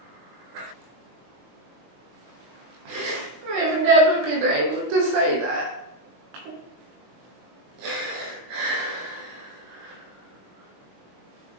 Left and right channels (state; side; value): late; left; 20 ms